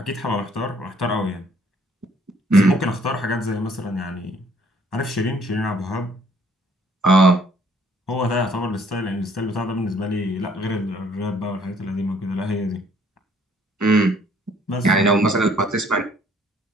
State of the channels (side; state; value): both; normal; correlation 0.62